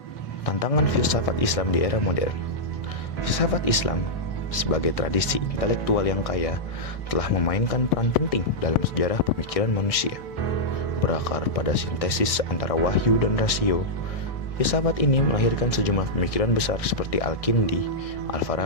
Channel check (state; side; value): late; right; 1.6 ms